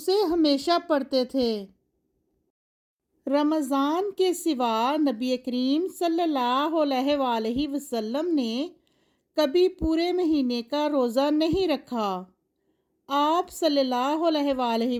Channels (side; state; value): both; identical; correlation 1.00